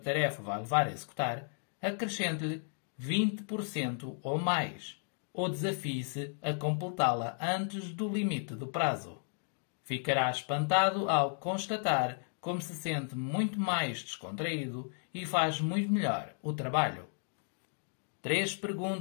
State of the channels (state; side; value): silent; right; 55 dB below the other